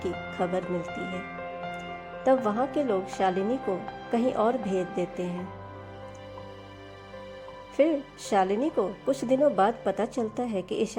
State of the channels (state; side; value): identical; both; correlation 1.00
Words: खबर मिलती है। तब वहाँ के लोग शालिनी को कहीं और भेज देते हैं। फिर शालिनी को कुछ दिनों बाद पता चलता है कि